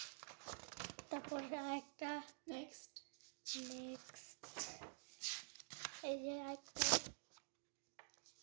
আরেকটা নেক্সট এই যে আরেকটা,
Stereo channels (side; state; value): left; silent; digital silence